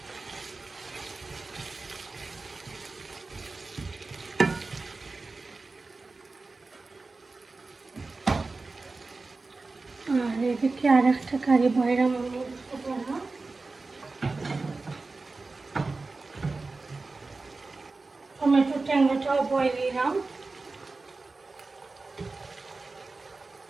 এদিকে আর একটা কারি বয়রাম আমি টমেটো ট্যাংরাটাও বয়েল দিলাম।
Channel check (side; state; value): left; quieter; 3.7 dB